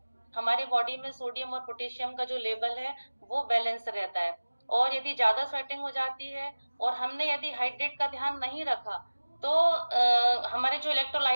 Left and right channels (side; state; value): both; inverted; correlation -1.00